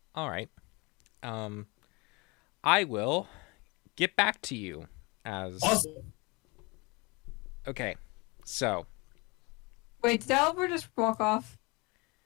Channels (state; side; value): quieter; right; 27.1 dB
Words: All right. I will get back to you as Awesome. Okay. So, Wait, did Dalibor just walk off?